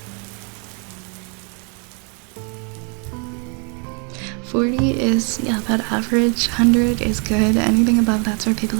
$40 is, yeah, about average. $100 is good. Anything above that's for people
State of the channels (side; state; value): left; quieter; 36.9 dB